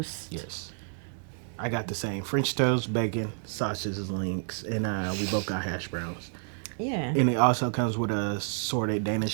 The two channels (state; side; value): silent; left; 56 dB below the other